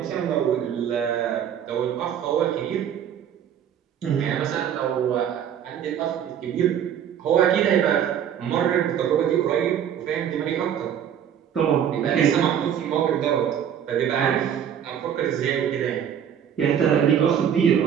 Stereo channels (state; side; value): quieter; left; 9.1 dB